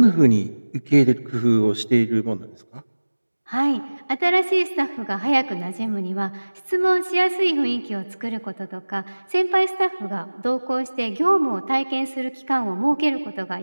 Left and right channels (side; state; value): both; inverted; correlation -1.00